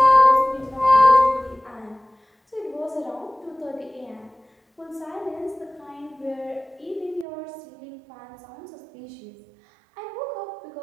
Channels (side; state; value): left; drops out; at 7.2 s